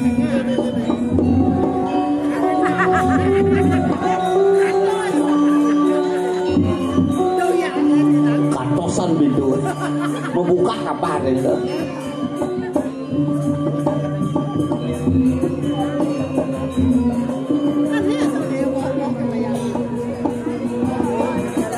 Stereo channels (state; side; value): identical; both; correlation 1.00